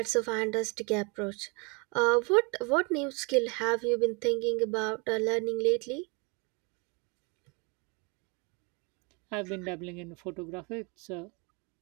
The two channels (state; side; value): quieter; left; 31.7 dB